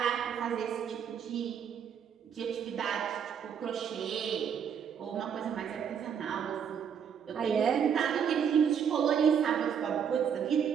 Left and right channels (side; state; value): left; quieter; 7.8 dB